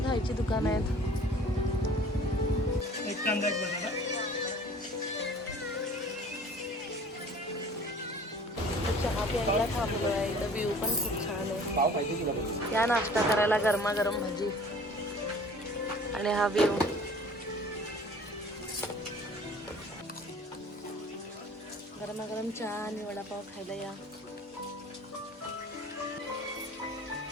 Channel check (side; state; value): both; normal; correlation 0.48